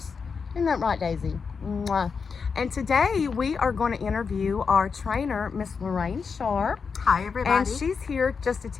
Isn't that right, Daisy? Mwah. And today we are going to interview our trainer, Miss Lorraine Sharp. Hi, everybody. And she's here just to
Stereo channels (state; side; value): quieter; right; 5.5 dB